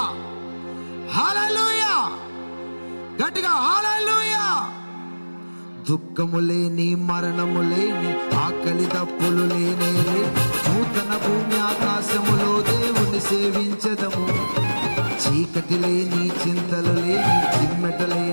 హల్లెలూయా, గట్టిగా హల్లెలూయా. దుఃఖము లేని, మరణము లేని, ఆకలి దప్పులు లేనే నూతన భూమి ఆకాశములో దేవుని సేవించదము. చీకటి లేని, చింతలు లేని, చిమ్మెట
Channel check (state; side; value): inverted; both; correlation -1.00